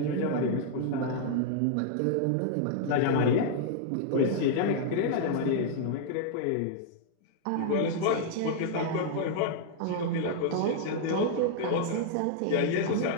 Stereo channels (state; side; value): different; both; correlation -0.01